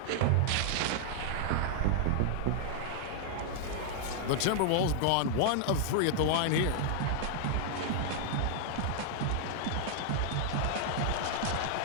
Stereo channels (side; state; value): both; different; correlation -0.01